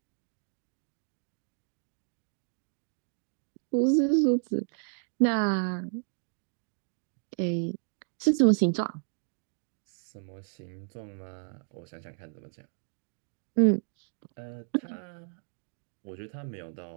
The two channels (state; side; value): silent; left; 56 dB below the other